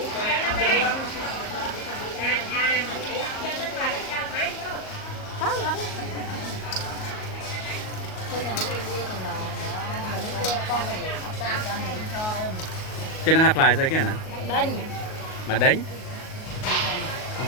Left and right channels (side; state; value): right; late; 38 ms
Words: Chứ nó hạt lại rồi kia nè đinh mà đánh không